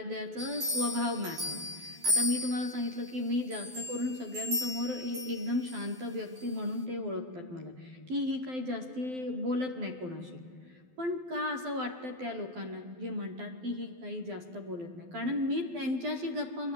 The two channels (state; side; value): late; left; 12 ms